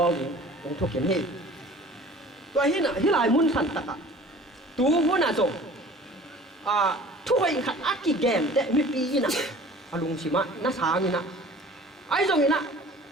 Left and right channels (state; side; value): normal; both; correlation 0.46